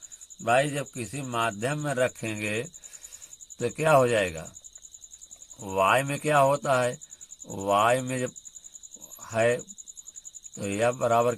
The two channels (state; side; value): identical; both; correlation 1.00